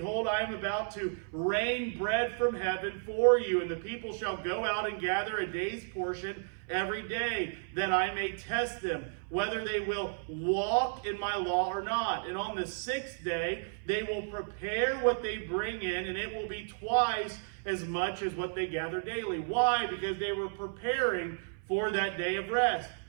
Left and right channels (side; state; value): left; silent; 56 dB below the other